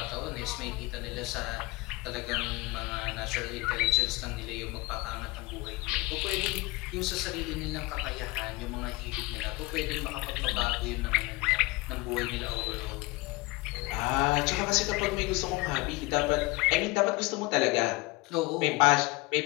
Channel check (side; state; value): right; quieter; 23.1 dB